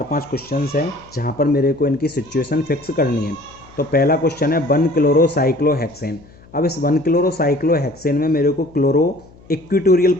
क्वेश्चंस हैं जहाँ पर मेरे को इनकी सिचुएशन फिक्स करनी है। तो पहला क्वेश्चन है 1 क्लोरोसाइक्लोहेक्सेन। अब इस 1 क्लोरोसाइक्लोहेक्सेन में मेरे को क्लोरो इक्वेटोरियल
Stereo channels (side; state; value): left; noise; hum, 25 dB below the sound